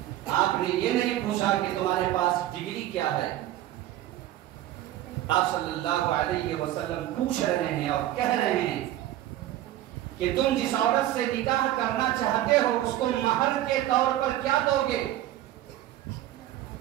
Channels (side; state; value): left; quieter; 13.8 dB